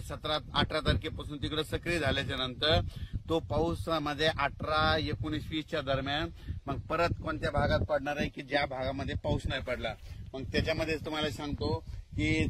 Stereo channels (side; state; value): both; identical; correlation 1.00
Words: 17-18 तारखेपासून तिकडे सक्रिय झाल्याच्या नंतर तो पाऊस मध्ये 18, 19, 20च्या दरम्यान मग परत कोणत्या भागात पडणार आहे की ज्या भागामध्ये पाऊस नाही पडला. मग त्याच्यामध्ये तुम्हाला सांगतो की